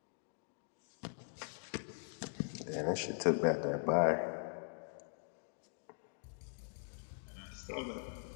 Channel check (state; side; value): silent; right; digital silence